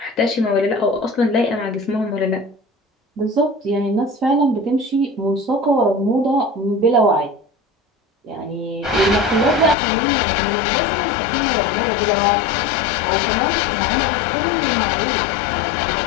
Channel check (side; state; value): right; drops out; at 9.8 s